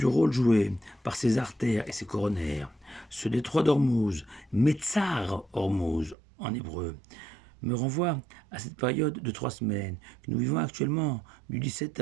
rôle joué par ses artères et ses coronaires. Ce détroit d'Ormuz, Metzar Hormuz en hébreu, me renvoie à cette période de 3 semaines que nous vivons actuellement, du 17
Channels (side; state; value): left; drops out; at 6.2 s